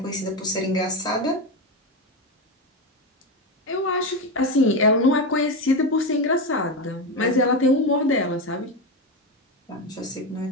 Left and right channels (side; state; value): both; normal; correlation 0.15